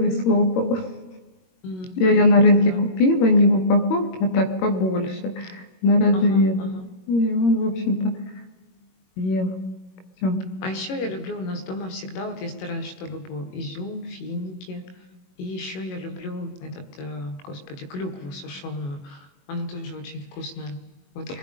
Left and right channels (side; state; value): right; late; 22 ms